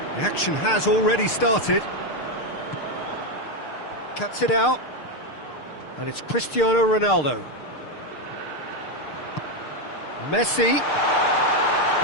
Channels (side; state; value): right; late; 6.6 ms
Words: The action has already started. Cuts it out, and it's Cristiano Ronaldo. Messi.